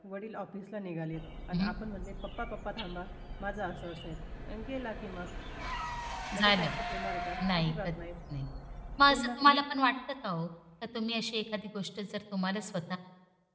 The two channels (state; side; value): identical; both; correlation 1.00